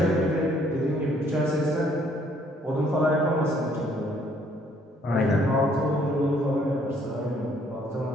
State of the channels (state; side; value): normal; both; correlation 0.64